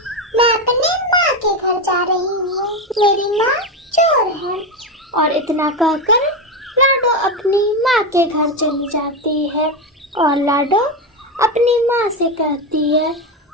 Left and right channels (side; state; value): both; normal; correlation 0.13